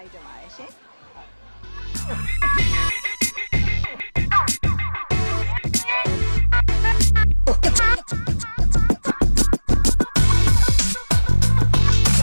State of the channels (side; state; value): both; inverted; correlation -1.00